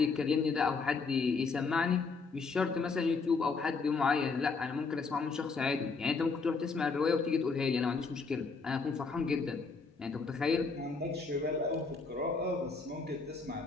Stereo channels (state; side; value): quieter; right; 4.5 dB